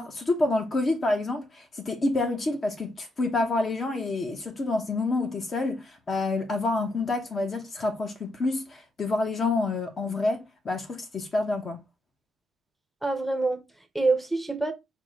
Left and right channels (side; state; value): both; normal; correlation 0.80